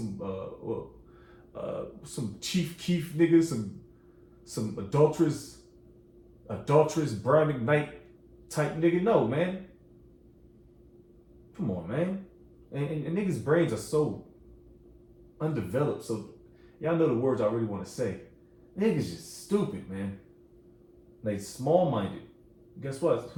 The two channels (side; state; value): both; identical; correlation 1.00